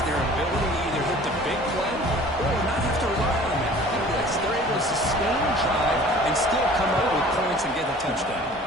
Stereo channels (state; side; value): normal; both; correlation 0.47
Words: their ability to either hit the big play or not have to rely on that. They're able to sustain drive and still come up